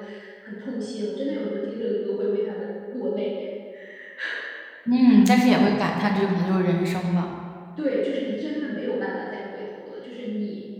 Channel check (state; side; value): identical; both; correlation 1.00